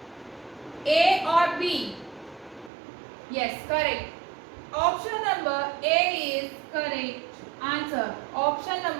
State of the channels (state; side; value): drops out; left; at 2.7 s